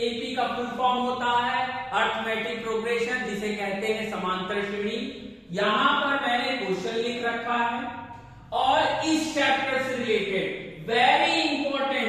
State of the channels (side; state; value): both; identical; correlation 1.00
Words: का फुल फॉर्म होता है अर्थमेटिक प्रोग्रेशन, जिसे कहते हैं समांतर श्रेणी। यहां पर मैंने क्वेश्चन लिख रखा है और इस चैप्टर से रिलेटेड वेरी